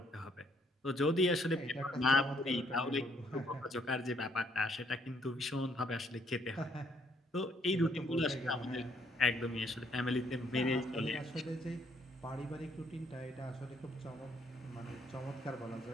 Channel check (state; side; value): normal; both; correlation 0.67